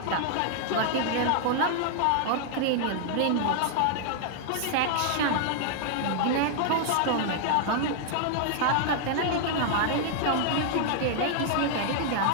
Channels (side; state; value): both; different; correlation 0.00